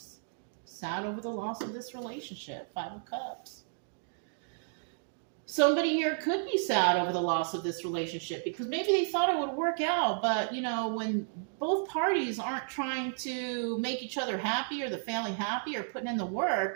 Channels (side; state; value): left; silent; digital silence